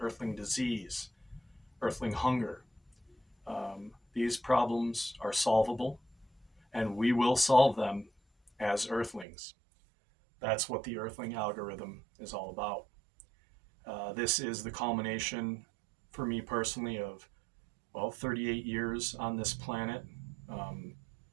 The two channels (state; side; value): drops out; left; at 9.2 s